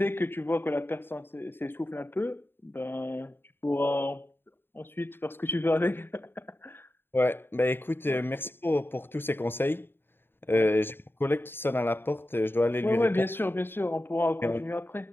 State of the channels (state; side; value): late; right; 0.10 ms